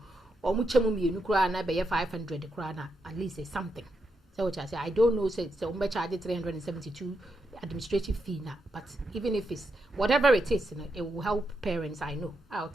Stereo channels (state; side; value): normal; both; correlation 0.83